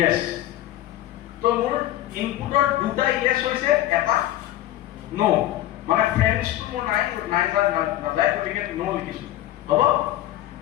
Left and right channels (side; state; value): right; quieter; 14.1 dB